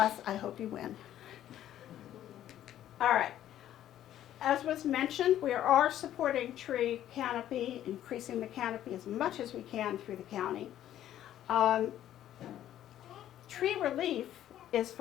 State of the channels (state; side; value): quieter; right; 11.9 dB